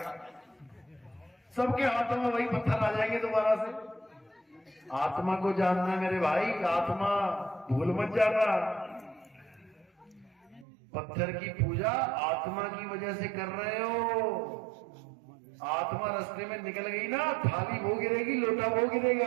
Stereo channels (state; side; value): drops out; left; at 10.7 s